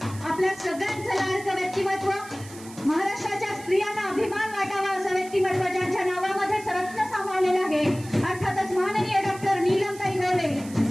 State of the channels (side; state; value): right; noise; hiss, 18 dB below the sound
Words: आपल्या सगळ्यांचं लाडकं व्यक्तिमत्व महाराष्ट्राच्या स्त्रियांना अभिमान वाटावा असं व्यक्तिमत्व ज्यांच्या नावामध्येच रत्न सामावलेलं आहे अर्थातच माननीय डॉक्टर नीलमताई गोरे